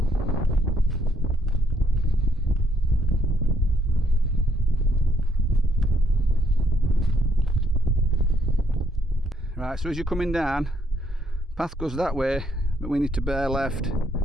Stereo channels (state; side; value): normal; both; correlation 0.70